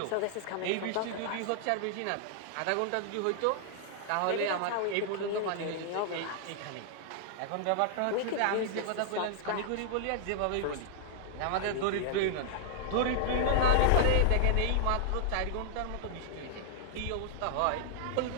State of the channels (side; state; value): both; different; correlation -0.01